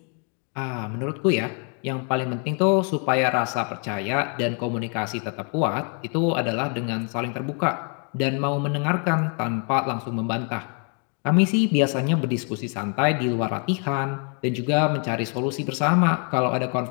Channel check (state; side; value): quieter; right; 39.4 dB